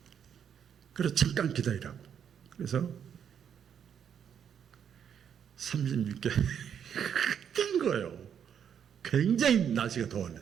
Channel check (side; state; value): left; quieter; 8.3 dB